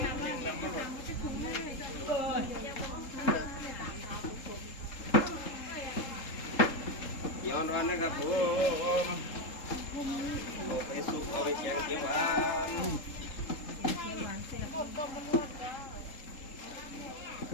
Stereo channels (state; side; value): late; right; 3.7 ms